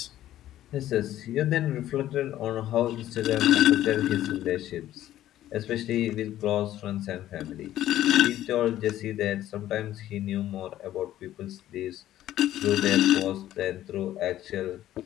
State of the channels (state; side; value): quieter; right; 13.1 dB